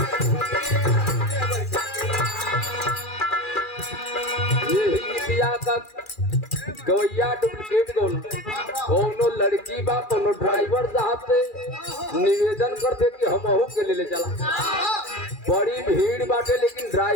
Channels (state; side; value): late; right; 2.4 ms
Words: का गवैया डुप्लीकेट कोनो लड़की बा कोनो ड्राइवर साहब से निवेदन करते कि हम के ले चला। बड़ी भीड़ बाटे लेकिन